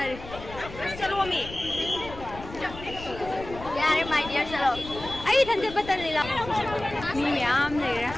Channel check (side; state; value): left; noise; rumble, 13 dB below the sound